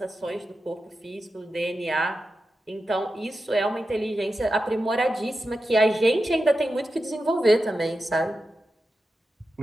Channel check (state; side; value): normal; both; correlation 0.91